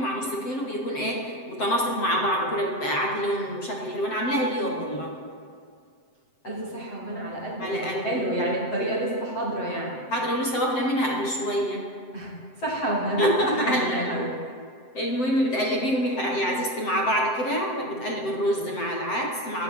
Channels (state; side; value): late; right; 7.8 ms